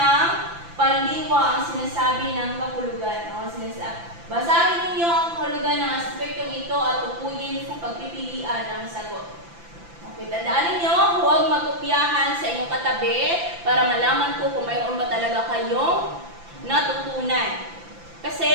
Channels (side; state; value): left; late; 5.9 ms